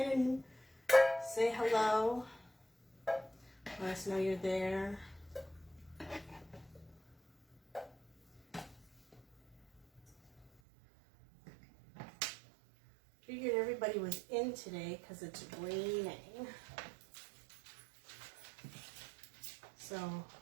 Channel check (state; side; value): drops out; left; at 10.5 s